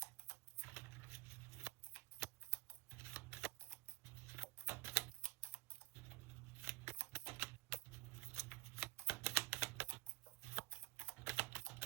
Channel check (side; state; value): left; quieter; 23.5 dB